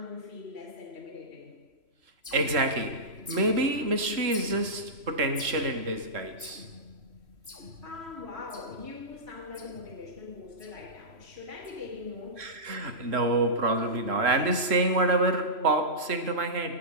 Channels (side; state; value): left; late; 3.0 ms